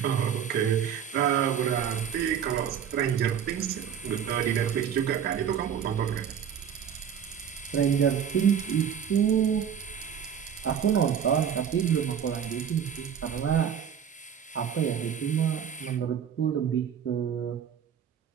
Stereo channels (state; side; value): quieter; left; 8.3 dB